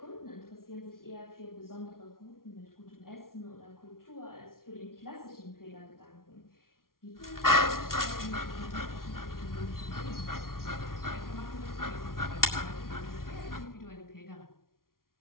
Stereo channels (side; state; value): right; late; 0.92 ms